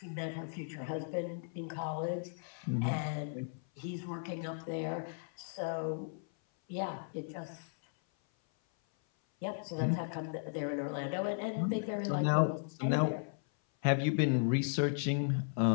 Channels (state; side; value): silent; right; 54 dB below the other